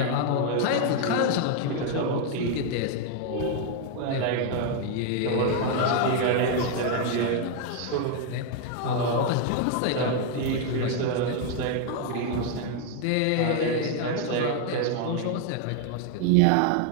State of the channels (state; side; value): different; both; correlation 0.00